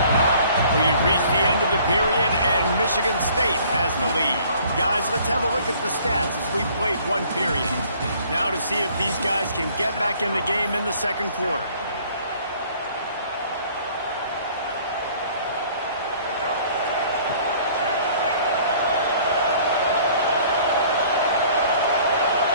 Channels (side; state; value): both; inverted; correlation -0.55